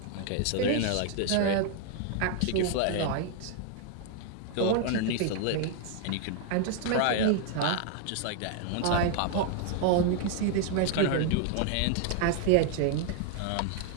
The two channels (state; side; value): different; both; correlation 0.00